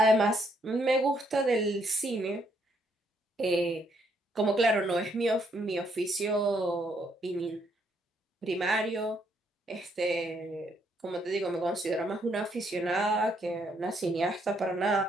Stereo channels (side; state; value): both; normal; correlation 0.72